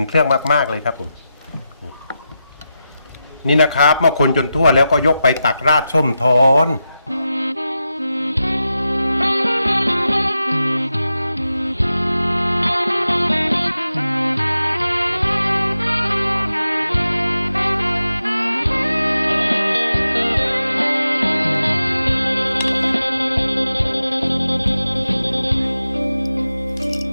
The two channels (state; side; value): inverted; both; correlation -0.90